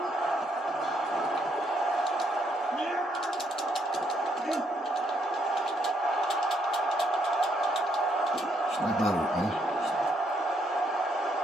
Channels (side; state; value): both; normal; correlation 0.73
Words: Snap out of it, man.